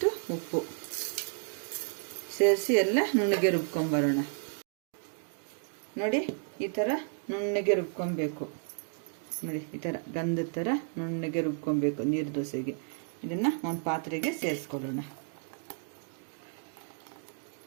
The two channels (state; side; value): silent; left; 56 dB below the other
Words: ಉಪ್ಪು ಸೇರಿಸಿ ಎಲ್ಲ ನುಣ್ಣಗೆ ರುಬ್ಕೊಂಬರೋಣ. ನೋಡಿ, ಈ ಥರ ನುಣ್ಣಗೆ ರುಬ್ಕೊಬೇಕು. ನೋಡಿ, ಈ ಥರ ಗಂಧದ ಥರ ನುಣ್ಣಗೆ ರುಬ್ಕೊಬೇಕು ನೀರು ದೋಸೆಗೆ. ಇದನ್ನು ಒಂದು ಪಾತ್ರೆಗೆ ಸೇರಿಸ್ಕೊಳ್ಳೋಣ.